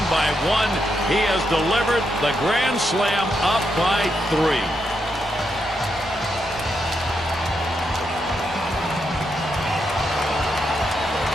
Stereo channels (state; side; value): normal; both; correlation 0.82